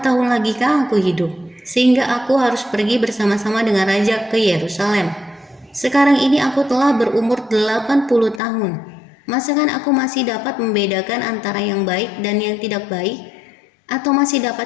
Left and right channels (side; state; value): right; drops out; at 8.4 s